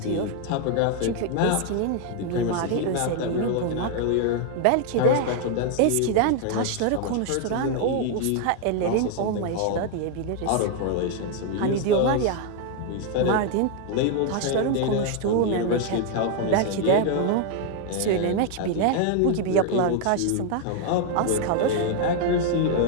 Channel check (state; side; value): different; both; correlation 0.00